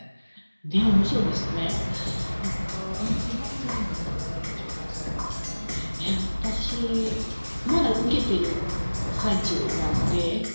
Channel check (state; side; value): inverted; both; correlation -1.00